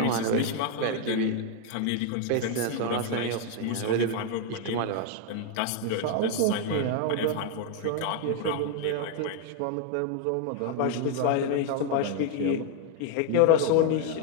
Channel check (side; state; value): both; different; correlation 0.01